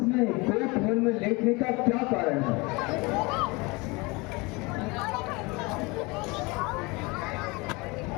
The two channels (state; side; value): quieter; right; 25.8 dB